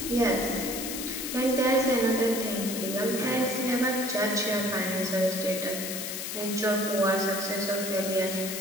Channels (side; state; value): left; noise; hiss, 5 dB below the sound